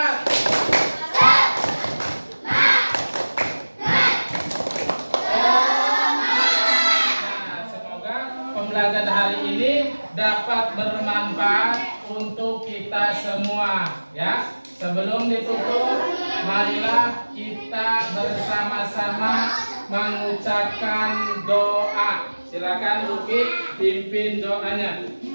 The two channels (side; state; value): both; inverted; correlation -1.00